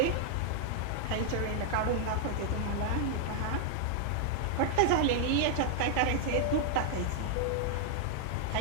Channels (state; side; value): different; both; correlation 0.00